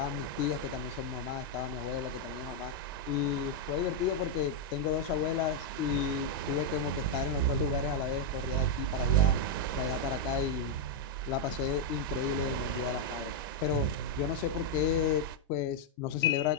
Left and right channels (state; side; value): normal; both; correlation -0.01